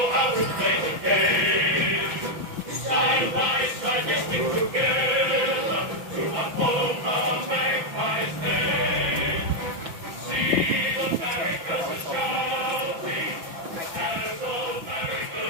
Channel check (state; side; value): late; left; 6.0 ms